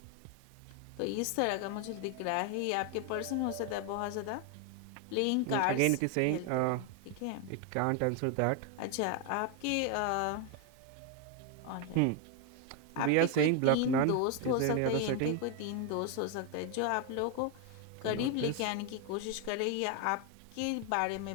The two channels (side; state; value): both; different; correlation 0.01